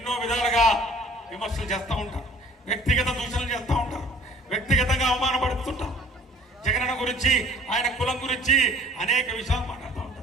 విధాలుగా విమర్శలు చేస్తూ ఉంటారు, వ్యక్తిగత దూషణలు చేస్తూ ఉంటారు, వ్యక్తిగతంగా అవమానపడుతుంటారు. జగనన్న గురించి, ఆయన కులం గురించి అనేక విషయాలు మాట్లాడుతూ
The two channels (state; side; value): normal; both; correlation 0.51